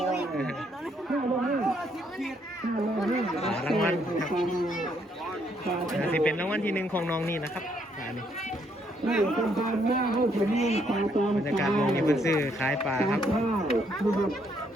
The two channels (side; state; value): both; normal; correlation 0.71